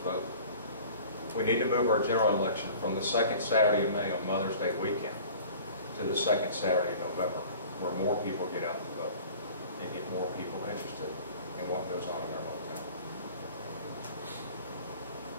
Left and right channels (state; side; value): inverted; both; correlation -0.44